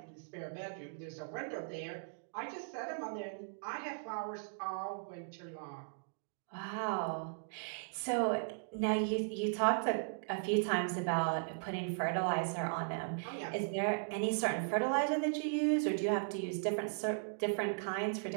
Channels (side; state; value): left; silent; digital silence